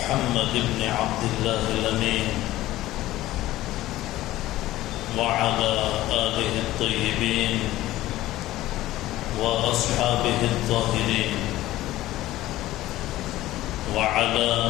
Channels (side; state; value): right; quieter; 15.8 dB